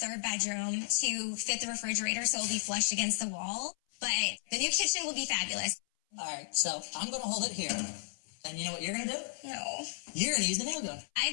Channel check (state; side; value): silent; right; 55 dB below the other